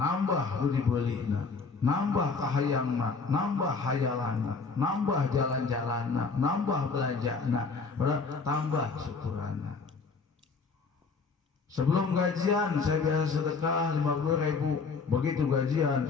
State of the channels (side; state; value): right; quieter; 4.6 dB